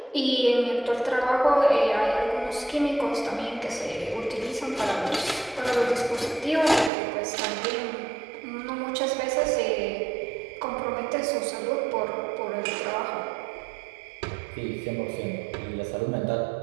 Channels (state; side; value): drops out; left; at 6.9 s